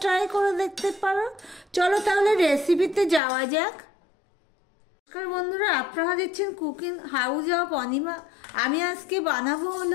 ট্রাই করে দেখতে পারো। চলো তাহলে রেসিপিতে যাওয়া যাক। নমস্কার বন্ধুরা, আপনারা দেখছেন কুকিং হাউস অফ অনিমা। আমি আজকে বানাবো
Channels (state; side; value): drops out; right; at 3.2 s